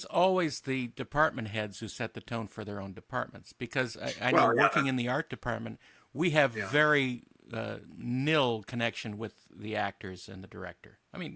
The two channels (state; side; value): identical; both; correlation 1.00